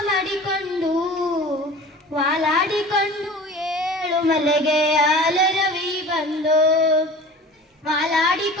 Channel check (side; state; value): both; normal; correlation 0.40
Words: ಮಾಡಿಕೊಂಡು ವಾಲಾಡಿಕೊಂಡು ಏಳು ಮಲೆಗೆ ಹಾಲರವಿ ಬಂದೋ,